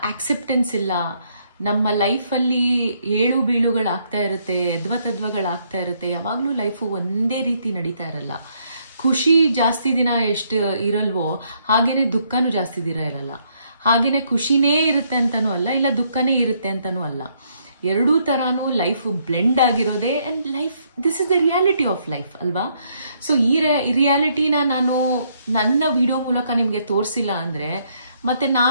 ಆಕ್ಸೆಪ್ಟೆನ್ಸ್ ಇಲ್ಲ. ನಮ್ಮ ಲೈಫಲ್ಲಿ ಏಳು ಬೀಳುಗಳಾಗ್ತಾ ಇರುತ್ತೆ, ಎದ್ವತದ್ವಗಳಾಗ್ತಾ ಇರುತ್ತೆ. ಯಾವಾಗ್ಲೂ ಲೈಫು ಒಂದೇ ರೀತಿ ನಡೀತಾ ಇರಲ್ಲ. ಖುಷಿ ಜಾಸ್ತಿ ದಿನ ಎಷ್ಟು ಇರಲ್ವೋ ಹಾಗೇನೆ ದುಃಖನೂ ಜಾಸ್ತಿ ದಿನ ಇರಲ್ಲ. ಹಾಗೇನೆ ಖುಷಿನೇ ಇರುತ್ತೆ ಅಂತಾನೂ ಅಲ್ಲ, ಇಲ್ಲ ದುಃಖನೇ ಇರುತ್ತೆ ಅಂತಾನೂ ಅಲ್ಲ. ಎರಡೂ ತರಾನು ಲೈಫ್ ಬ್ಲೆಂಡ್ ಆಗಿರೋದೇ. And life, this is the reality of life ಅಲ್ವಾ? ಸೊ ಈ ರಿಯಾಲಿಟಿನ ನಾನು ನನ್ನ ವಿಡಿಯೋ ಮೂಲಕ ನಿಮ್ಗೆ ತೋರಿಸಿಲ್ಲ ಅಂದ್ರೆ ಮತ್ತೆ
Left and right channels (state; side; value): inverted; both; correlation -0.71